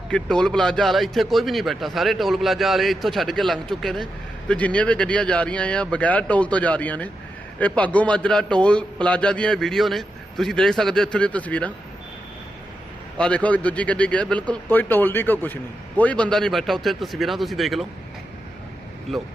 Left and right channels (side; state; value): both; normal; correlation 0.87